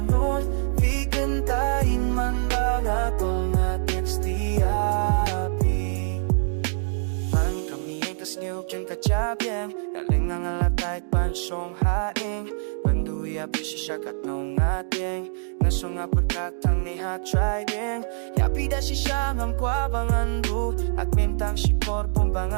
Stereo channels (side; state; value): left; silent; digital silence